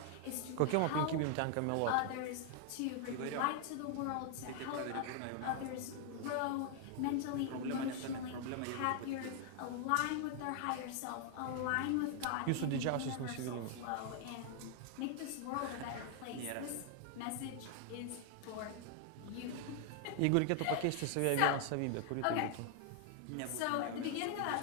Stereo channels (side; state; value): both; different; correlation 0.00